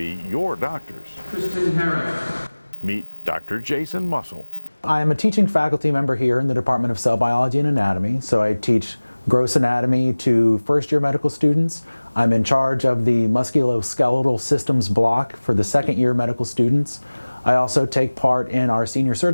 your doctors? Kristen Harris. Meet Dr. Jason Mussel. I am a teaching faculty member here in the Department of Cell Biology and Anatomy, so I teach gross anatomy to first-year medical students. I'm in charge of the musculoskeletal systems block for the second-year medical students. I also take part in our senior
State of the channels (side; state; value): both; inverted; correlation -1.00